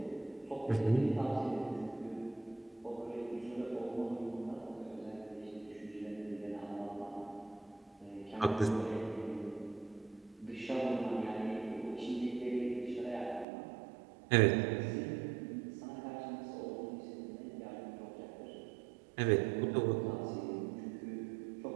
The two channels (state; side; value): drops out; left; at 13.5 s